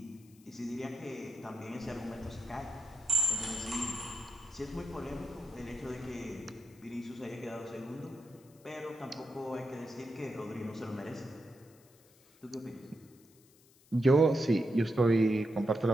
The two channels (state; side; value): noise; left; hiss, 28 dB below the sound